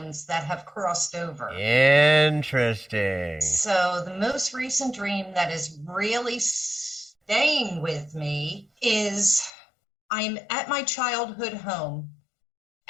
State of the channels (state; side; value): drops out; right; at 9.5 s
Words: that have crossed over. Interesting. So the most recent dream that is really staying with me is I'm at my childhood home